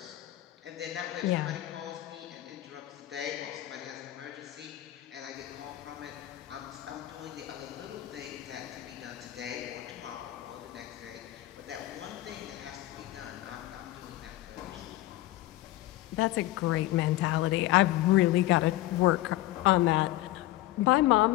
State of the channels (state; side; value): quieter; right; 16.2 dB